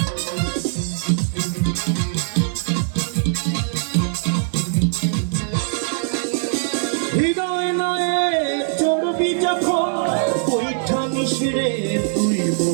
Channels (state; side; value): silent; left; digital silence